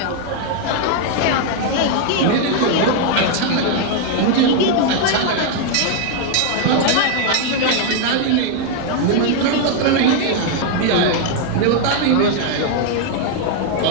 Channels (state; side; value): different; both; correlation 0.00